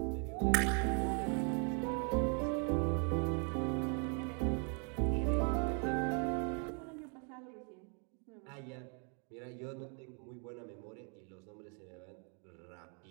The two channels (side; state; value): left; quieter; 39.3 dB